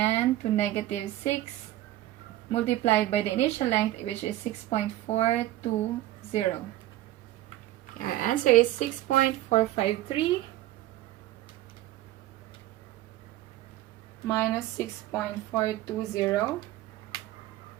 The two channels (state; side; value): quieter; left; 15.1 dB